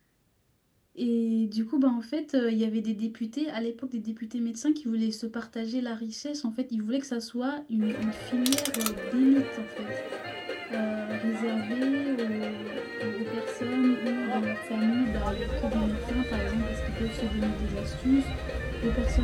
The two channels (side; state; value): both; identical; correlation 1.00